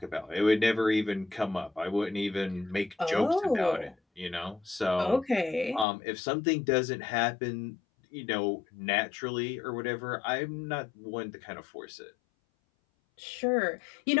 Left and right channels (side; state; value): right; drops out; at 5.9 s